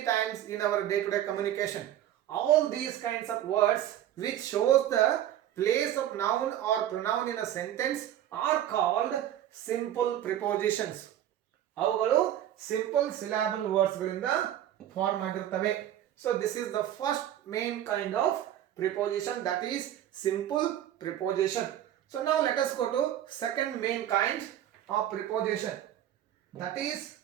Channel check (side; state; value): left; quieter; 11.7 dB